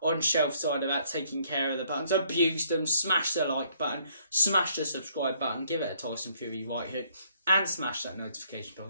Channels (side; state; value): both; inverted; correlation -0.66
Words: on Shelf Side about taking care of the buttons. Abuse them. Smash the like button. Smash the subscribe button. Give it a Tyson Fury right hook. And smash that notification bell